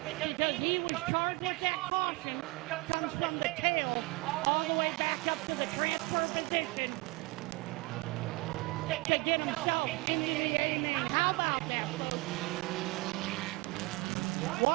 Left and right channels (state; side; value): quieter; left; 24.3 dB